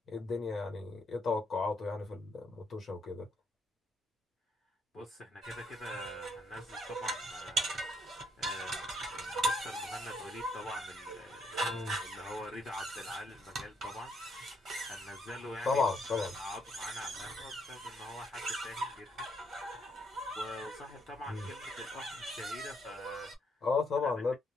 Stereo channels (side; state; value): both; normal; correlation 0.73